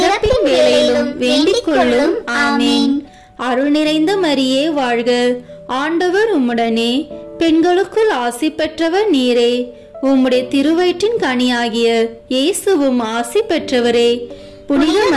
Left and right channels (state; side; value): identical; both; correlation 1.00